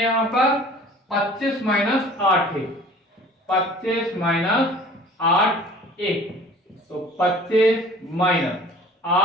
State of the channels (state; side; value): normal; both; correlation 0.47